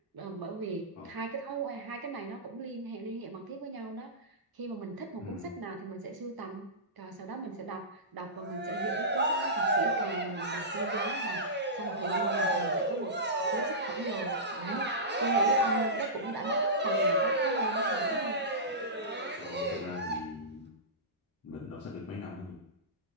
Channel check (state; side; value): normal; both; correlation -0.18